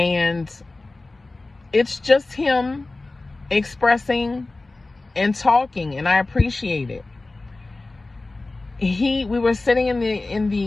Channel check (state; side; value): quieter; right; 3.2 dB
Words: it's just him expressing and talking, and I appreciate it. We were sitting in